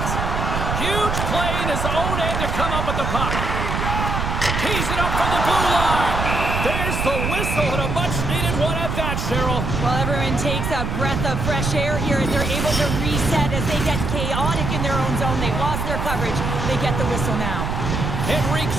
Huge play in his own end to come up with the puck. Tees it up from the blue line. There's the whistle and a much-needed one at that, Cheryl. Well, everyone takes a breath of fresh air here as they're able to reset as they get chaotic in their own zone. They've lost their coverage. They get the whistle now.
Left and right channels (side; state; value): right; noise; rumble, 2 dB below the sound